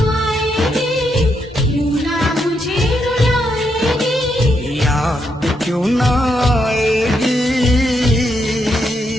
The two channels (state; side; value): normal; both; correlation 0.80